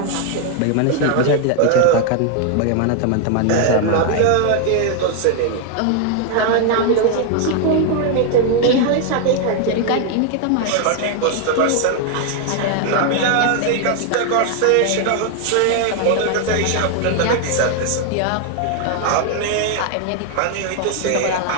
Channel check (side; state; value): both; different; correlation 0.00